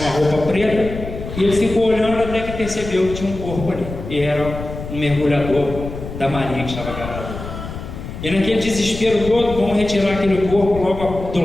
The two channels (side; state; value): left; noise; rumble, 9 dB below the sound